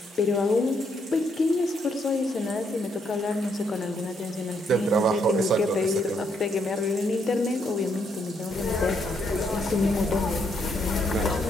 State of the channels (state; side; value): normal; both; correlation 0.74